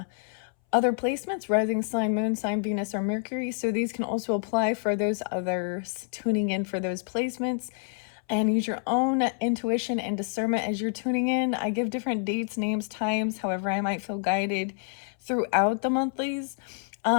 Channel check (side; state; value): right; silent; 59 dB below the other